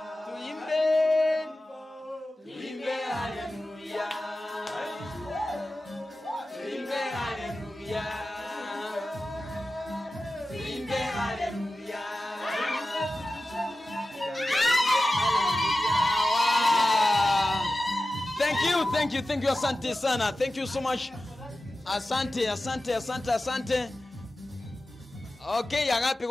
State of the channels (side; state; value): both; normal; correlation 0.94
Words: Tuimbe hallelujah. Tuimbe hallelujah. Tuimbe hallelujah. Thank you, asante sana. Thank you so much. Asante. Okay, Agape